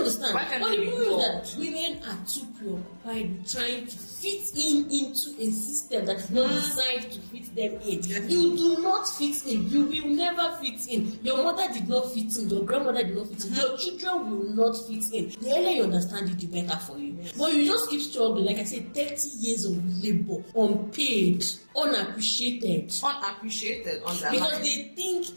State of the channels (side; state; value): both; inverted; correlation -1.00